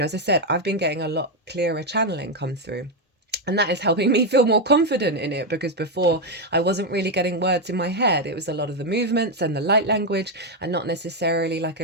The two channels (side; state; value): both; normal; correlation 0.04